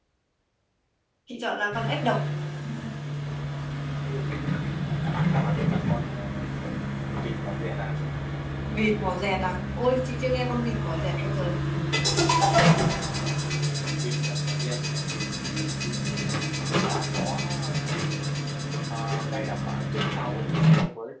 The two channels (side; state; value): both; identical; correlation 1.00